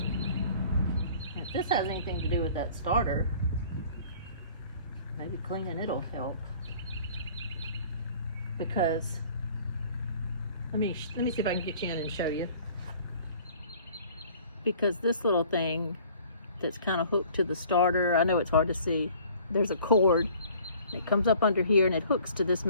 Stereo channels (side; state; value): both; inverted; correlation -0.52